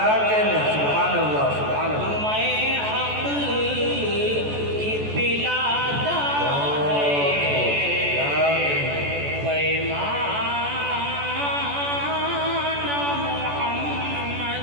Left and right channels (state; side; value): late; left; 14 ms